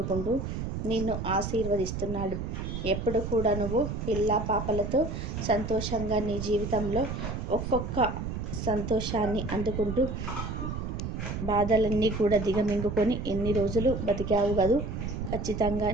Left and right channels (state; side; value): noise; right; rumble, 4 dB below the sound